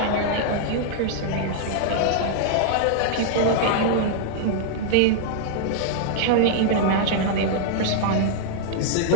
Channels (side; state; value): both; different; correlation -0.01